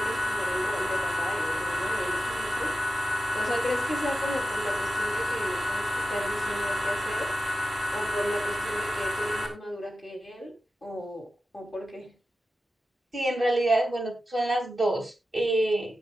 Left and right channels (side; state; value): both; normal; correlation 0.92